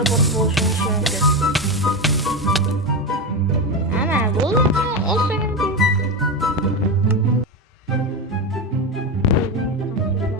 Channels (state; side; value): normal; both; correlation 0.16